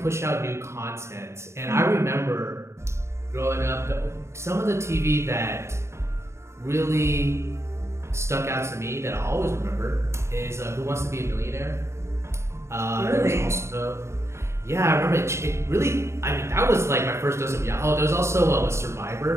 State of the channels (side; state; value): left; late; 0.13 ms